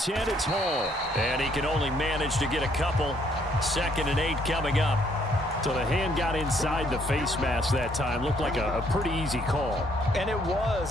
it's Hall. And he can only manage to get a couple. 2nd and 8 coming up. So the hand got inside the face mask that time. Looked like a pretty easy call. And it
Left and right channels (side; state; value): both; normal; correlation 0.67